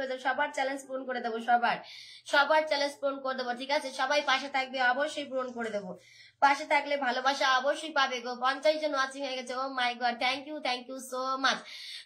হয়ে যাবে, সবার চ্যালেঞ্জ পূরণ করে দেবো, সবার চ্যালেঞ্জ পূরণ করে দেবো, ঠিক আছে? সবাই পাশে থাকবে, অবশ্যই পূরণ করে দেবো। পাশে থাকলে ভালোবাসা অবশ্যই পাবে গো। 50 জন ওয়াচিং হয়ে গেছে। Oh my god, thank you so much.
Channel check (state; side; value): identical; both; correlation 1.00